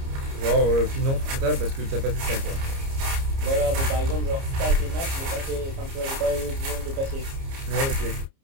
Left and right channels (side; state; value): left; late; 30 ms